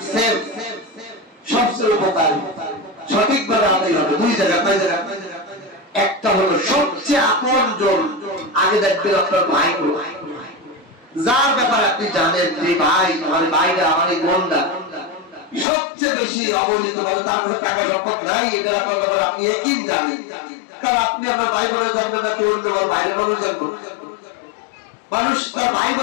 সেফ, সবচেয়ে উপকারী, সঠিকভাবে আদায় হবে 2 জায়গা। একটা হলো সবচেয়ে আপনজন, আগে দেখবেন আপনার ভাই গুলো, যার ব্যাপারে আপনি জানেন যে ভাই আমার ভাইরা আমার এই বোনরা সবচেয়ে বেশি অবহেলিত বলে, তার কাছে টাকা সম্পদ নাই, এটা আপনার ব্যাপারে আপনি একই জানেন, কারণ আপনি আপনার ভাই বোনের জানবেন না, কেউ বাইরের মানুষ জানবো, মানুষ তার ভাই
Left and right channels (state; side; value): drops out; right; at 15.7 s